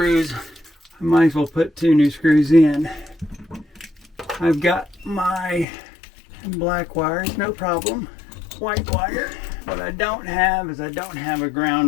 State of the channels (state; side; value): drops out; right; at 5.7 s